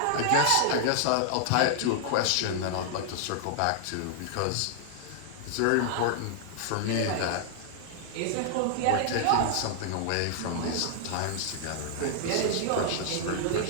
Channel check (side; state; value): both; different; correlation -0.01